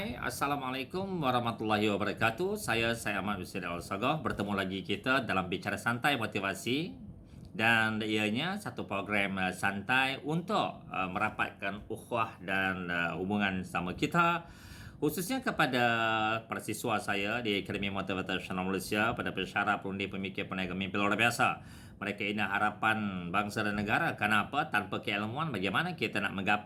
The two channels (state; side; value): identical; both; correlation 1.00